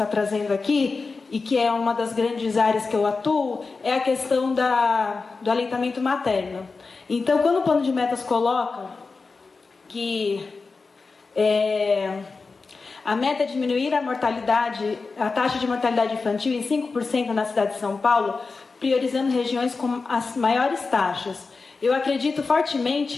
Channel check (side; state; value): right; quieter; 4.2 dB